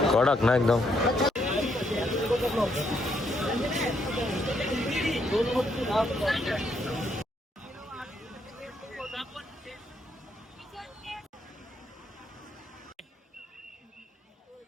कडक ना एकदम.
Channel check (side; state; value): both; normal; correlation 0.74